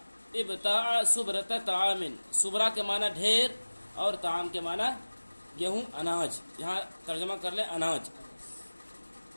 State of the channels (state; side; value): inverted; both; correlation -1.00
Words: ابتاع سبرۃ طعام، سبرہ کے معنی ڈھیر اور طعام کے معنی گیہوں، اناج، یہاں ترجمہ کر لیں اناج۔